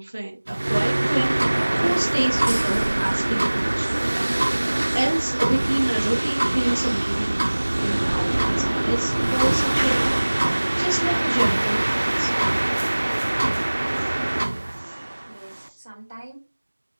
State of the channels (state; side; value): inverted; both; correlation -1.00